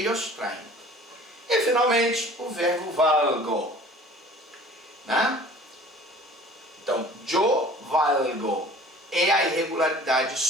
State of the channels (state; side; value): normal; both; correlation 0.47